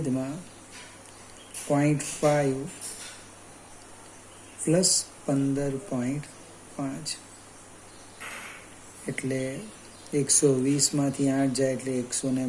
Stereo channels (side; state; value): both; identical; correlation 1.00